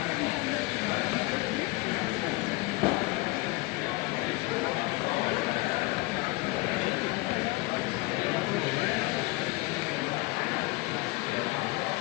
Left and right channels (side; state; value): right; quieter; 22.8 dB